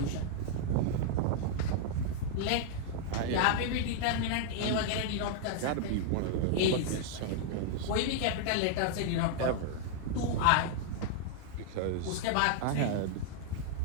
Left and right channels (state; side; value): different; both; correlation 0.00